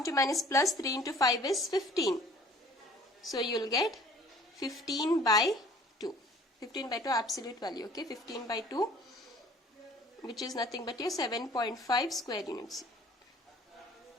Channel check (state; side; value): normal; both; correlation 0.52